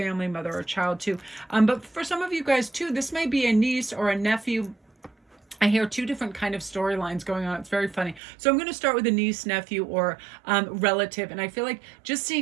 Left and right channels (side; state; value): left; drops out; at 8.2 s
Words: member or a child too. But for some of you guys too, this may be a niece or a nephew. I hear two different kind of storylines going on. It's very funny. So I'm going to start with a niece, nephew, or relative. And I feel like just